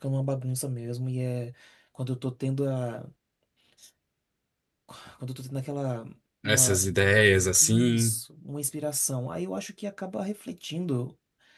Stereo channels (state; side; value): identical; both; correlation 1.00